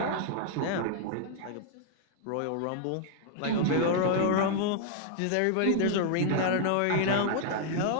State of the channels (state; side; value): different; both; correlation 0.00